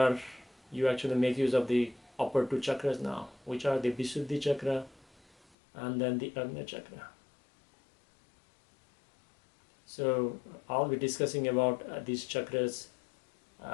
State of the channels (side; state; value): right; drops out; at 5.5 s